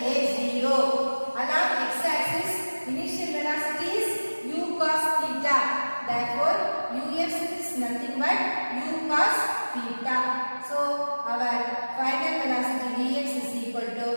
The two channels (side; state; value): both; inverted; correlation -1.00